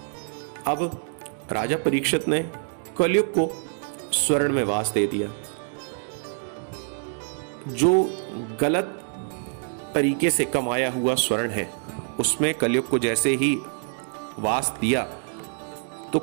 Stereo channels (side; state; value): left; silent; 57 dB below the other